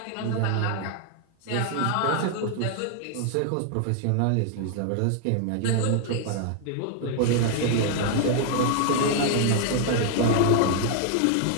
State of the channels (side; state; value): both; different; correlation 0.00